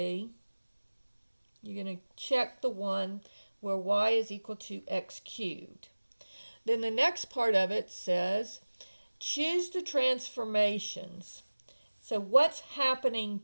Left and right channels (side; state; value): both; inverted; correlation -1.00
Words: you're going to check the one where y is equal to x cubed. Then the next part of it says, choose the transformations. So what's happening